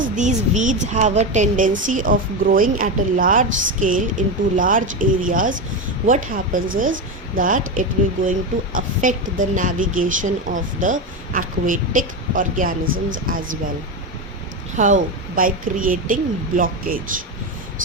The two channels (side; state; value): both; normal; correlation 0.15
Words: these weeds have a tendency of growing at a large scale into large areas, what happens is that it will going to affect the navigation of the aquatic organisms as well. How? By creating blockage.